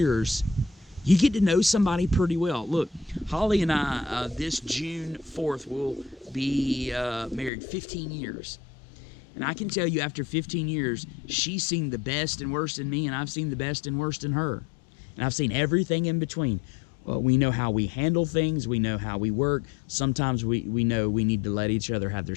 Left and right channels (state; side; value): drops out; right; at 7.5 s